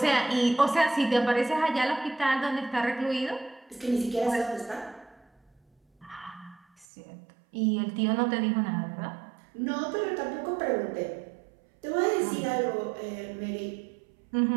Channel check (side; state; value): left; drops out; at 6.9 s